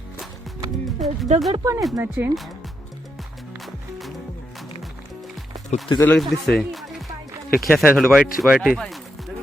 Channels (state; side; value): normal; both; correlation 0.82